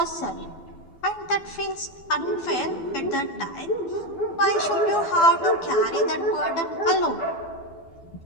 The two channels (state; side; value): late; right; 12 ms